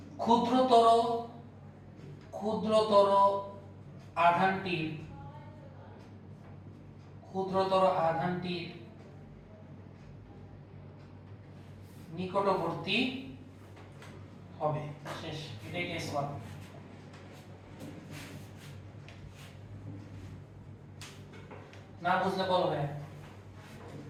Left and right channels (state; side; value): identical; both; correlation 1.00